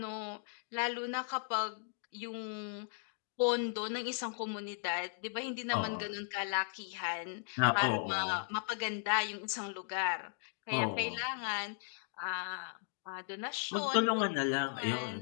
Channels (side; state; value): right; silent; digital silence